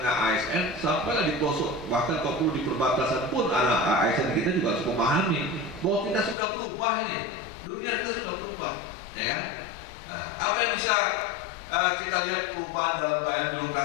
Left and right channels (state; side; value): drops out; right; at 6.4 s